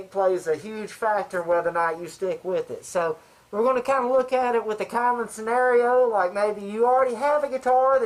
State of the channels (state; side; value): identical; both; correlation 1.00